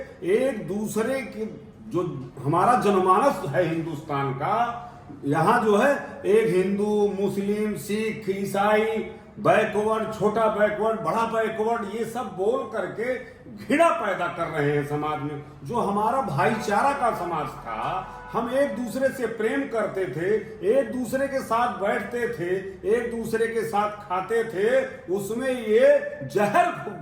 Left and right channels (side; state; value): both; identical; correlation 1.00